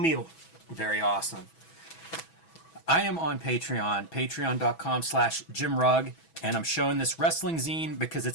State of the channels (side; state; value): right; late; 6.1 ms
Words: Very awesome. I am on Patreon, patreon.com/Jim Rugg. And I'm showing this wrestling zine because